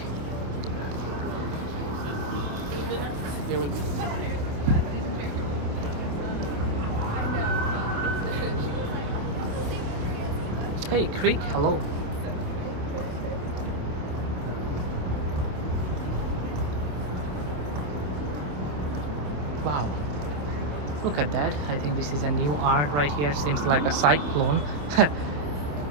Hey Creek, hello. Wow, look at that. I think this is a new art right here. Seems like a cyclone.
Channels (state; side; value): late; left; 27 ms